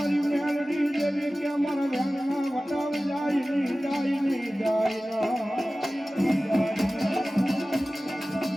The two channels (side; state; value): both; normal; correlation 0.96